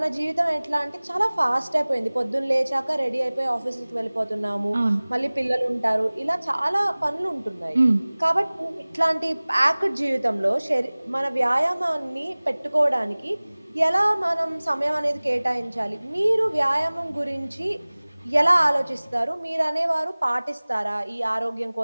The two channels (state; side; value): inverted; both; correlation -1.00